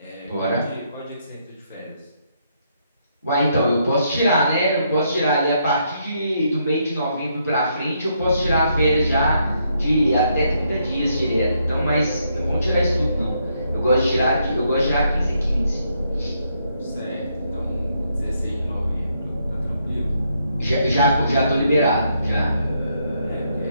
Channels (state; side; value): inverted; both; correlation -0.75